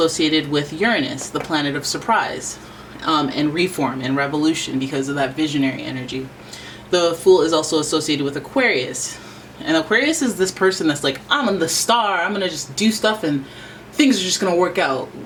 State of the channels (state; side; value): identical; both; correlation 1.00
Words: with Uranus, the planet of surprise, and reform and revolution because of that visionary energy. The Fool is also associated with Aquarius. And Aquarius is this person that's like, I'm the star, I'm gonna just do stuff and things are just gonna work out.